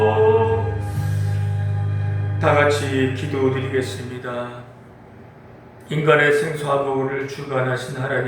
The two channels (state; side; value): identical; both; correlation 1.00